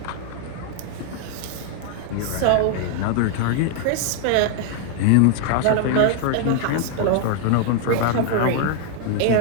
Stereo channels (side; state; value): both; different; correlation 0.00